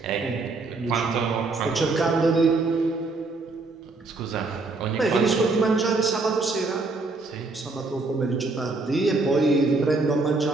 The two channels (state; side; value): quieter; left; 3.6 dB